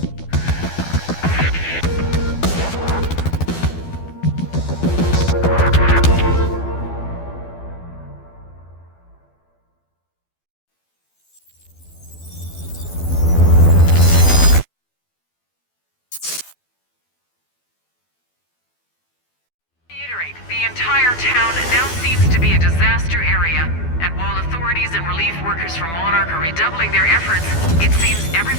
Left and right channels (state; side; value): late; right; 12 ms